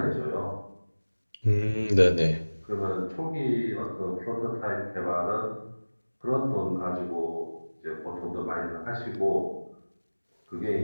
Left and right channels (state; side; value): inverted; both; correlation -1.00